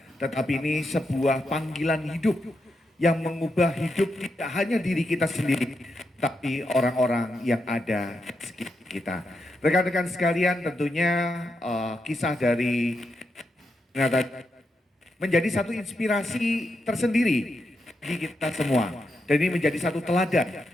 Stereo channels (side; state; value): both; normal; correlation 0.84